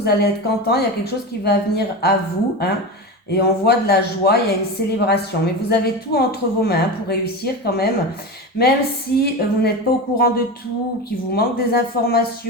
allez être content. Il y a quelque chose qui va venir à vous. Hein. Et on voit de la joie, il y a une célébration. Mais vous avez tout entre vos mains pour réussir quand même. Même si vous n'êtes pas au courant de tout, qu'il vous manque des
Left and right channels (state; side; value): normal; both; correlation 0.23